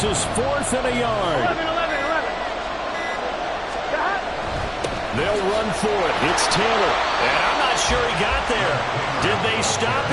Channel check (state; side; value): identical; both; correlation 1.00